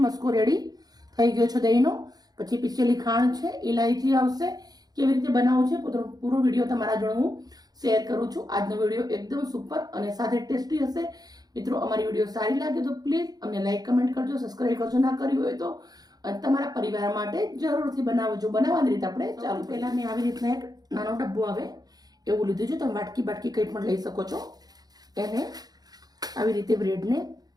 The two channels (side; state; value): left; late; 0.19 ms